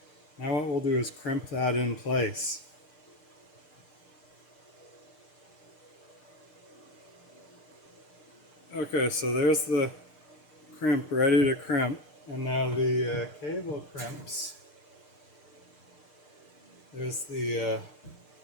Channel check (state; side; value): late; right; 6.6 ms